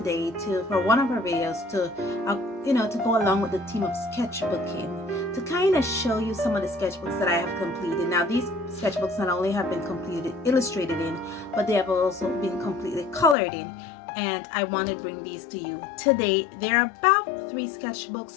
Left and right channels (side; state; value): right; drops out; at 13.4 s